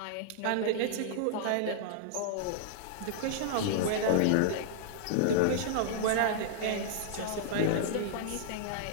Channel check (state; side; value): different; both; correlation -0.01